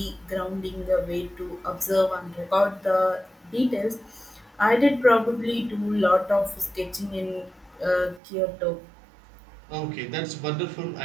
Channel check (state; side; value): drops out; left; at 8.2 s